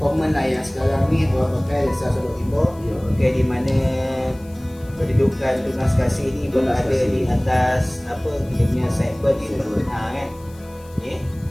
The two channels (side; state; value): left; noise; hiss, 26 dB below the sound